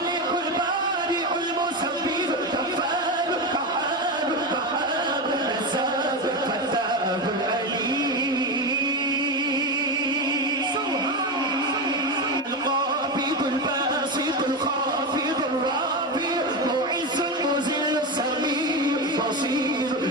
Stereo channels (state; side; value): normal; both; correlation 0.17